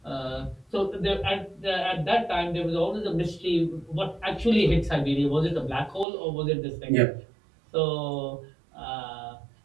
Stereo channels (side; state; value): left; drops out; at 6.1 s